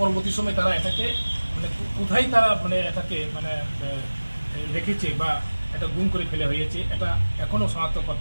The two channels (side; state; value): both; inverted; correlation -1.00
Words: সময় তারা এটাকে মানে কোথায় তারা মানে এটাকে মানে রেখেছে বা এটা গুম করে ফেলে হয়েছে এটা এখনও শনাক্ত